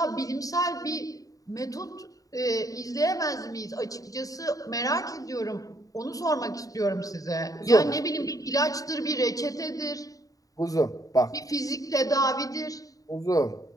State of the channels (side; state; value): right; late; 0.17 ms